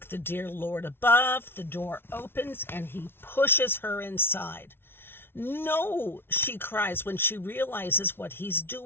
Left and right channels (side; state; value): right; late; 0.11 ms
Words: the dear Lord above, the door opens and he pushes her inside. No, she cries when she realizes what he's